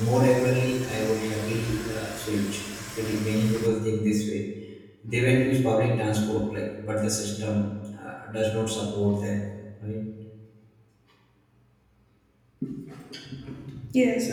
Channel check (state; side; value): identical; both; correlation 1.00